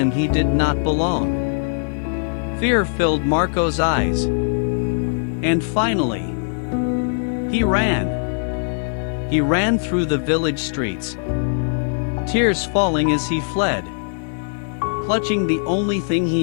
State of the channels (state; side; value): silent; right; digital silence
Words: he did not belong. Fear filled Marco's eyes. And finally, he ran. He ran through the village streets, tears falling as he fled, clutching the only thing